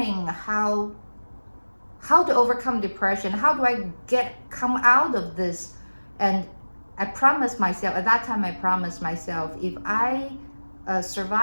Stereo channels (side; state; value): both; inverted; correlation -1.00